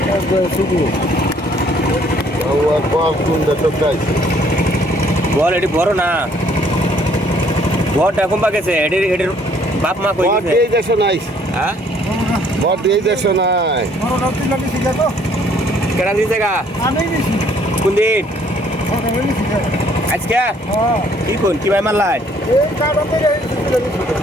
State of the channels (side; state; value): both; normal; correlation 0.62